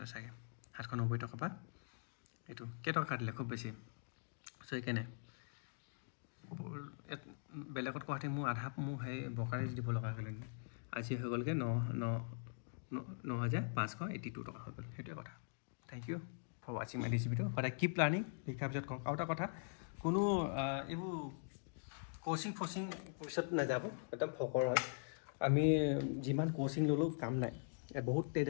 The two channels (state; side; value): silent; right; digital silence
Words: চাগে 790 টকা পৰা এইটো কেইটকা কাটিলে খুব বেছি চ' সেইকাৰণে বেলেগত কোৱাতে মোৰ আধা মোৰ সেই বকাৰে দিব লগা হৈ গ'ল আজি হৈ গ'লগৈ 9,582 টকা হৈ গ'ল সেইটোৱে কথা থেংক ইউ ফৰ ৱাচিং মাই দিছ ভিডিঅ' সদায় কিপ লাৰ্ণিং শিকাৰ পিছত কওক আৰু এটা কথা কোনো এইবোৰ কোচিং পিছত নাযাব একদম ফকৰ হয় আমি যিমান কোচিং ল'লেও কাম নাই বহুত